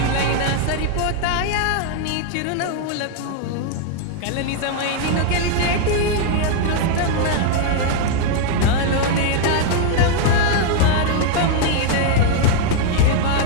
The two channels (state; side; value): different; both; correlation 0.00